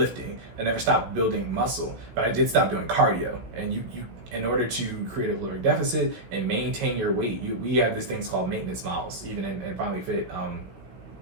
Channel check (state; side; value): late; left; 16 ms